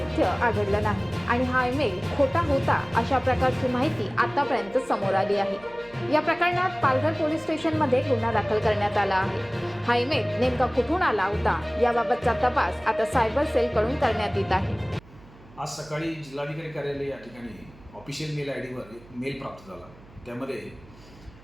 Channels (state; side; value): noise; right; hum, 23 dB below the sound